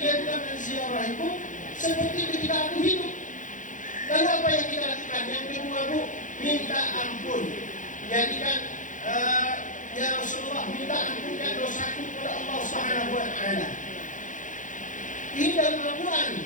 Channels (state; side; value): late; right; 0.37 ms